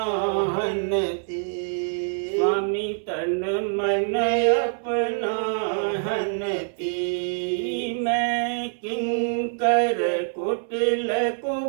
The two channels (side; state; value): left; silent; 62 dB below the other